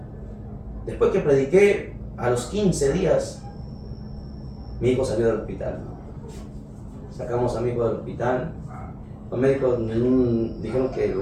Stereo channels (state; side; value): identical; both; correlation 1.00